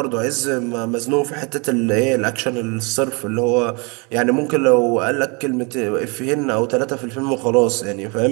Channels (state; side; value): quieter; left; 30.9 dB